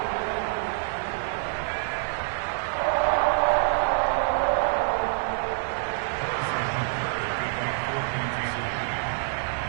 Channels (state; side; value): silent; left; 60 dB below the other